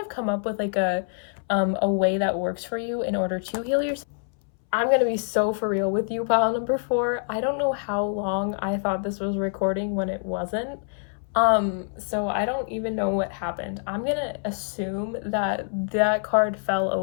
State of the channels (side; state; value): right; silent; 61 dB below the other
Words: of come up with like a way that works for you in order to heal yourself. I'm gonna be so for real with you, pile number 4. I don't know how long I thought this was recording when it wasn't. So I don't even know what happened. I'm gonna assume that that card fell